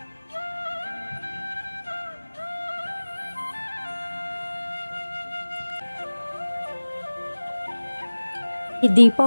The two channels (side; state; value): both; inverted; correlation -1.00